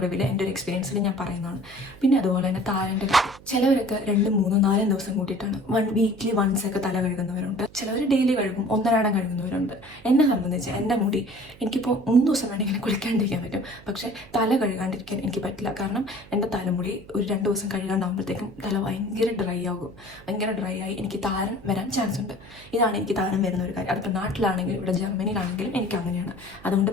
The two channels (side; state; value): right; noise; hum, 22 dB below the sound